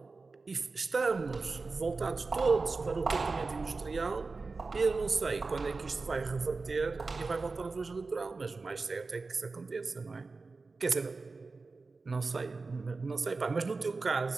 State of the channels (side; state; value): left; quieter; 4.0 dB